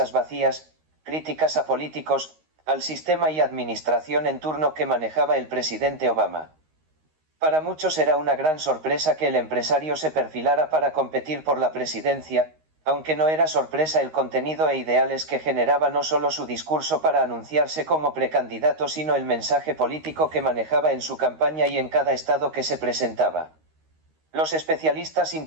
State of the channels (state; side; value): late; left; 13 ms